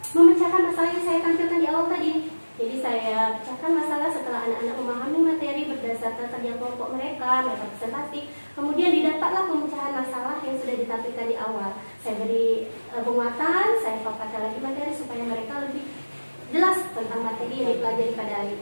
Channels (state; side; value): inverted; both; correlation -1.00